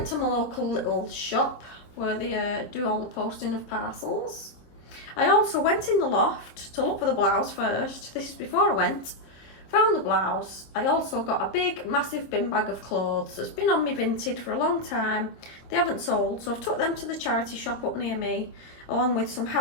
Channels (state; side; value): late; right; 25 ms